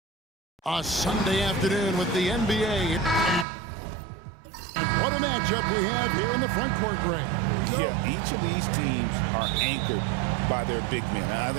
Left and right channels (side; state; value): left; drops out; at 3.5 s